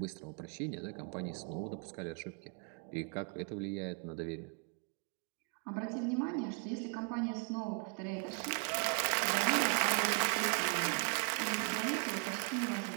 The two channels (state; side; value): quieter; left; 37.8 dB